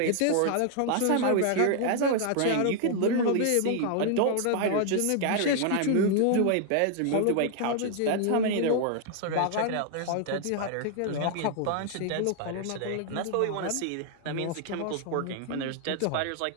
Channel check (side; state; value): both; different; correlation 0.00